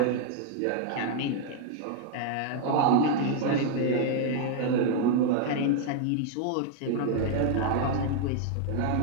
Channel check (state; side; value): different; both; correlation 0.00